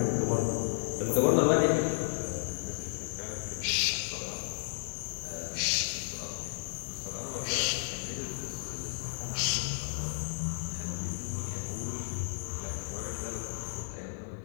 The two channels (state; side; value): silent; right; digital silence